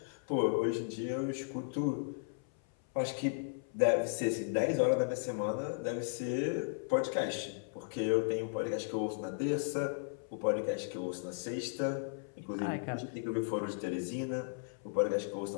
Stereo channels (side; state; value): right; silent; 54 dB below the other